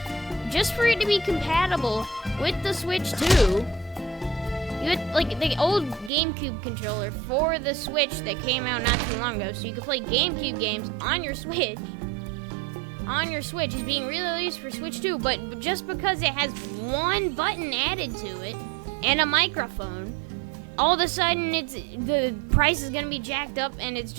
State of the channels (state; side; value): drops out; left; at 6.1 s